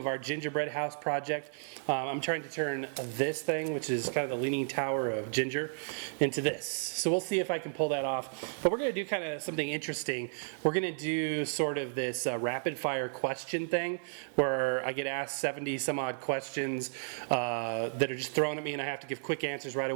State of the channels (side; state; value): left; silent; digital silence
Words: our gingerbread house project. I'm trying to turn this thing, which is kind of the leaning tower of ginger, into this. So we'll see if I can pull that off. But we're going to do kind of something interesting. We're going to do sort of this rapid fire question thing where I get asked 70 some odd questions that are just thrown at me and I have to give quick answers right